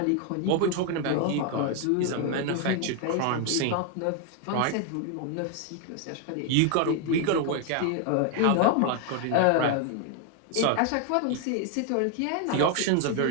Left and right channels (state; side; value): different; both; correlation 0.01